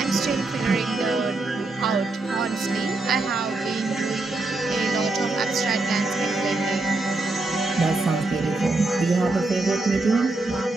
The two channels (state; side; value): quieter; left; 3.2 dB